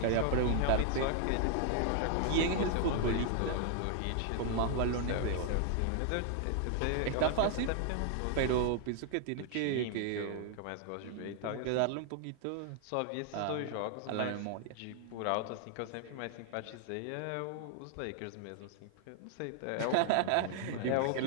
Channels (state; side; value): different; both; correlation 0.00